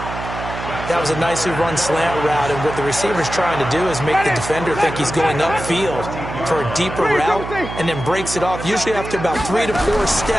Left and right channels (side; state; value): right; noise; hum, 8 dB below the sound